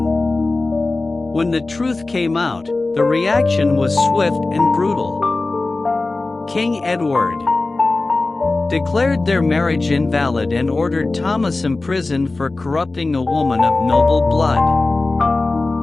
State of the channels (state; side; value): quieter; right; 3.3 dB